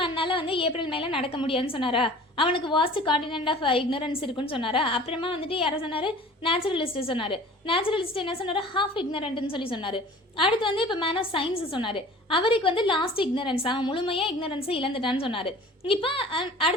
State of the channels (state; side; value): normal; both; correlation 0.45